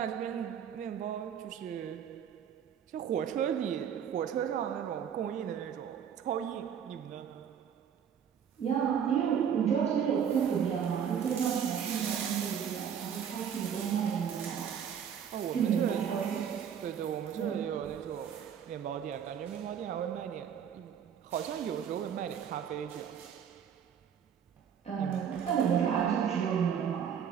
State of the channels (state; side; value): quieter; left; 8.1 dB